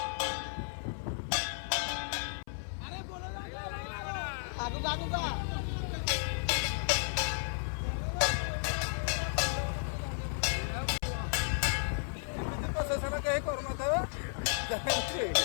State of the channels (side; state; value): right; silent; 55 dB below the other